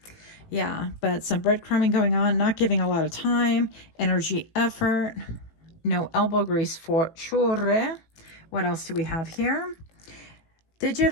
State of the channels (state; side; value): late; right; 18 ms